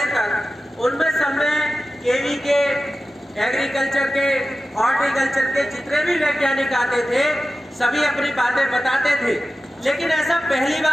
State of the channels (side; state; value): both; normal; correlation 0.94